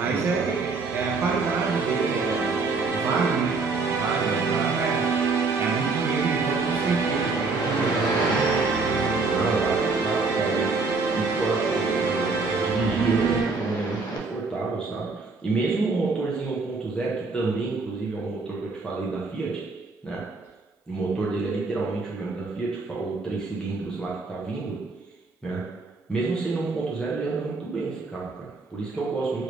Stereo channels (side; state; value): left; quieter; 4.0 dB